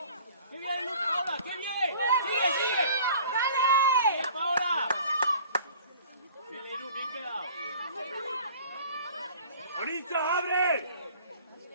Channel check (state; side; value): inverted; both; correlation -0.48